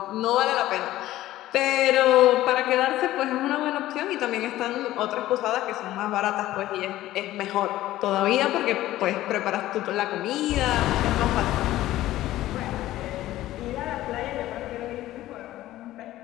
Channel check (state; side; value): quieter; right; 15.1 dB